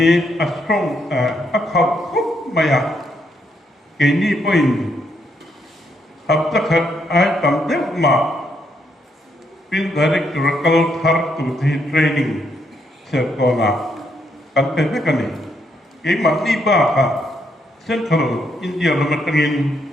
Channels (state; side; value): normal; both; correlation 0.75